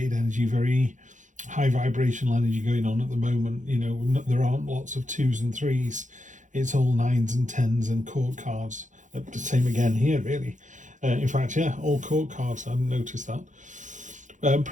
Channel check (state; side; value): late; left; 0.36 ms